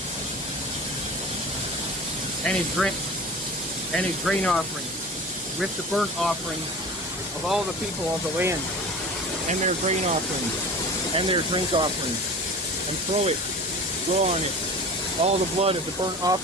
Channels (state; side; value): normal; both; correlation 0.37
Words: and his grain offering, with the burnt offering of all the people of the land, and their grain offerings, and their drink offerings, and throw on it all the blood of the burnt